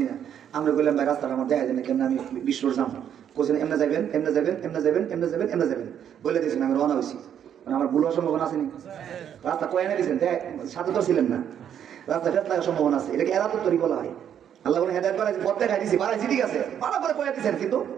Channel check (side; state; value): left; quieter; 9.2 dB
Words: না, আমরা বললাম ভাই রাস্তাটা আমার দেখা যায় না, কেমন আমি বিশ্বর যাবো, কোথায় এমনি যাবেন এমনি যাবেন এমনি যাবেন এমনি যাবেন এমনি যাবেন বলে দিয়েছেন, আমি রওনা হয়েছি। আমার ভুল হওয়ার সম্ভাবনা আসেনি, রাস্তা কয়ে এনে দিয়েছেন, সাথে তো ছিলেন না, রাস্তা ফেরত লাগার সম্ভাবনা আছে, এটাকে এরা তো তৈরি বলা হয়। আল্লাহ বলে হেদায়েত বাড়াইছি, পথ দেখাই দিয়েছি, বাড়াইছি ঠিক আছে, ভালো করে কয়ে দিয়েছেন, কিন্তু